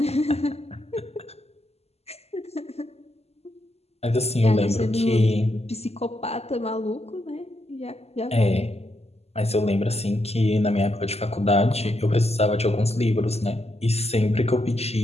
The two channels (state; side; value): late; right; 0.30 ms